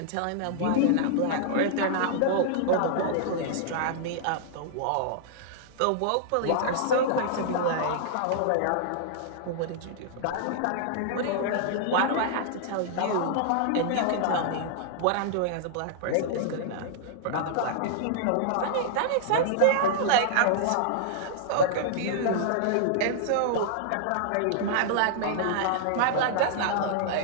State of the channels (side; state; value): both; different; correlation -0.01